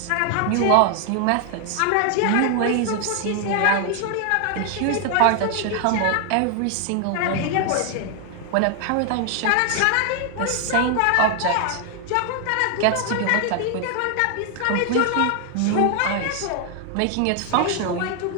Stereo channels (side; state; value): both; different; correlation 0.00